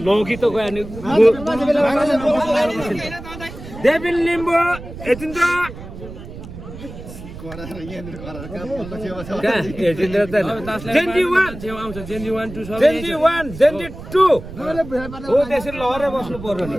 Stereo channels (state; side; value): noise; right; rumble, 13 dB below the sound